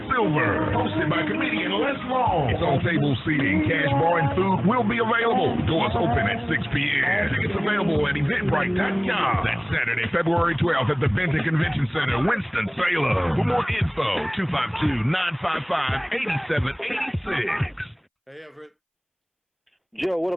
Silver. Hosted by comedian Les Long. It's on table seating, cash bar, and food will be available. Doors open at 6 p.m. Tickets available at eventbrite.com. That's Saturday, February 12th at the Benton Convention Center, Winston-Salem. For more info, 252-955-8786. Hey, Everett. Joe, what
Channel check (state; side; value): identical; both; correlation 1.00